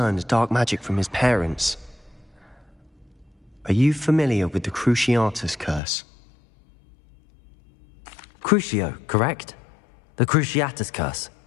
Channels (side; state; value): right; drops out; at 5.8 s